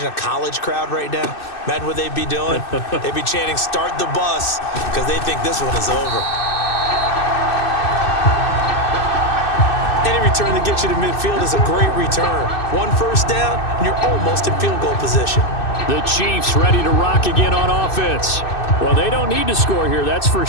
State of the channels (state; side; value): late; right; 2.6 ms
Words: a college crowd right now? Imagine what they'd be doing. They'd be chanting, "Start the bus," because they think this one is over. Any return that gets you to midfield is a great return. 1 first down, and you're almost in field goal position. The Chiefs ready to rock again on offense. Well, they don't need to score here, that's for